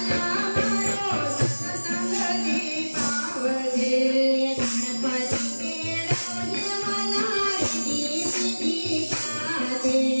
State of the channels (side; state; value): both; inverted; correlation -1.00